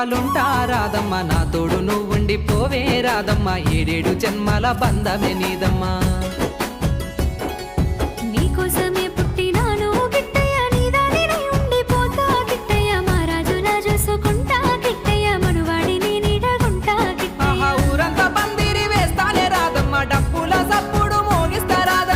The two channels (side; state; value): both; identical; correlation 1.00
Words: రాదమ్మ, నా తోడు నువ్వుండి పోవే రాదమ్మ, ఏడేడు జన్మల బంధమే నీదమ్మా. నీకోసమే పుట్టినాను గిట్టయ్య, నీదానినే ఉండిపోతా గిట్టయ్య, మా రాజులా చూసుకుంటా గిట్టయ్య, మనువాడిని నీడగుంటా గిట్టయ్య. ఆహా ఊరంతా పందిరి వేస్తానే రాదమ్మ, డప్పుల సప్పుడు మోగిస్తా